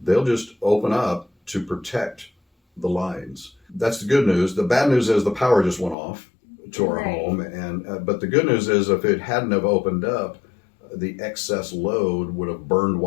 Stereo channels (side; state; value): right; drops out; at 6.0 s